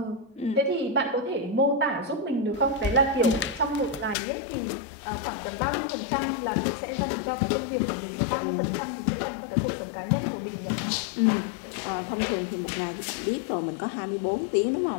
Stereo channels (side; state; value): right; drops out; at 4.2 s